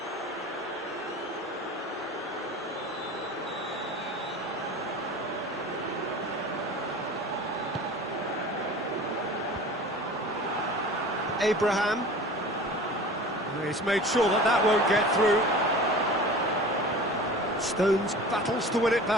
Abraham. He's made sure that that won't get through. Stones battles to win it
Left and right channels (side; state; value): both; normal; correlation 0.39